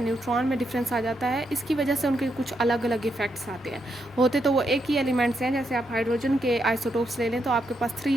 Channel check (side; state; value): both; normal; correlation 0.80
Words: में डिफरेंस आ जाता है, इसकी वजह से उनके कुछ अलग अलग इफ़ेक्ट्स आते हैं। होते तो वो एक ही एलिमेंट्स हैं, जैसे आप हाइड्रोजन के आइसोटोप्स ले लें तो आपके पास